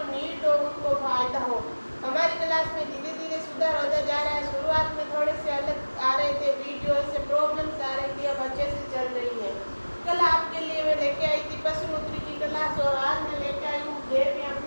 नीड हो उनको फायदा हो। हमारी क्लास में धीरे धीरे सुधार होता जा रहा है। शुरुआत में थोड़े से अलग आ रहे थे वीडियो, से प्रॉब्लम्स आ रही थी, अब अच्छे से चल रही है। कल आपके लिए मैं लेके आई थी पशुपुत्री की क्लास, और आज मैं लेके आई हूँ देवी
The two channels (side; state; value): both; inverted; correlation -1.00